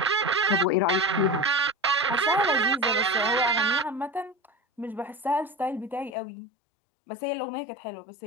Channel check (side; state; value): right; drops out; at 6.2 s